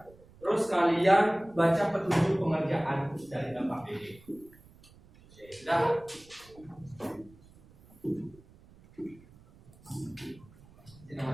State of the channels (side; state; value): right; noise; rumble, 25 dB below the sound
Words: Terus kalian baca petunjuk pengerjaan dari LKPD. sudah. Ini